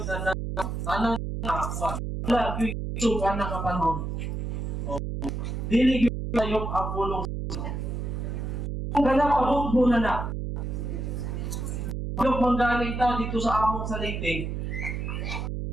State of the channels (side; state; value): right; noise; hum, 3 dB below the sound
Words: na tanan na wala yung isukan na kapanahon. Dili yung tayo ang bulong. Kung ganap, abot mo na. Yung manggaling ta dito sa among sa Leyte,